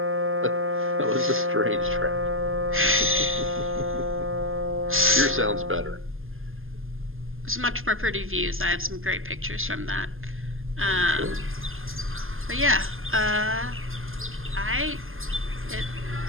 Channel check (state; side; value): late; left; 0.60 ms